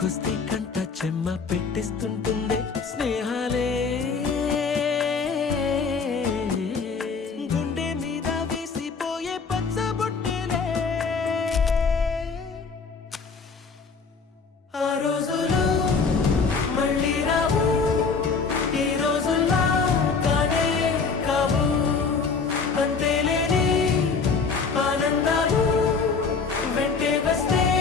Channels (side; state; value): right; quieter; 5.0 dB